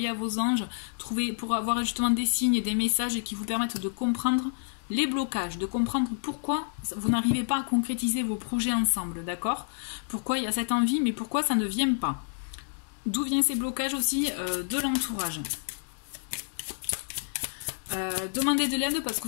anges, pour avoir justement des signes et des messages qui vous permettent de comprendre les blocages, de comprendre pourquoi vous n'arrivez pas à concrétiser vos projets ensemble, d'accord? Pourquoi il y a cette envie, mais pourquoi ça ne vient pas? D'où viennent ces blocages aussi de l'entourage? Demandez de l'aide parce que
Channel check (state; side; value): silent; right; digital silence